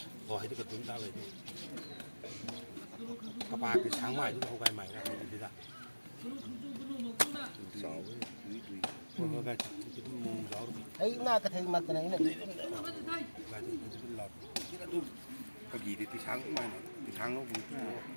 họ hay cái chúng ta về các ba cái sáng mai chúng ta không cái mày ra thế ra ấy na cái thằng mặt cái này cái gì thì sáng mai thì sáng nó cũng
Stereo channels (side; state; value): both; inverted; correlation -1.00